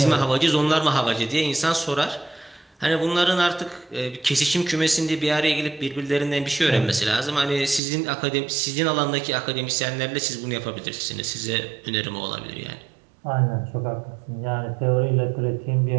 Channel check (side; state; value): left; drops out; at 7.8 s